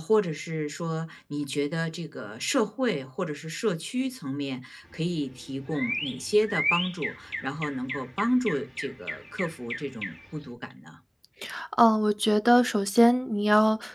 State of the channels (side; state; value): both; identical; correlation 1.00